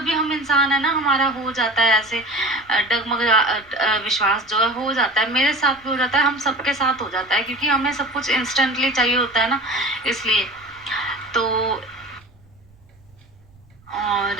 हम इंसान है ना, हमारा हो जाता है ऐसे डगमगा विश्वास जो है हो जाता है, मेरे साथ भी हो जाता है, हम सबके साथ हो जाता है, क्योंकि हमें सब कुछ इंस्टेंटली चाहिए होता है ना, इसलिए। तो और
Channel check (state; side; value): noise; right; rumble, 29 dB below the sound